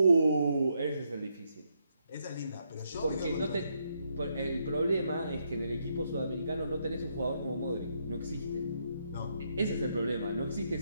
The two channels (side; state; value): both; inverted; correlation -0.77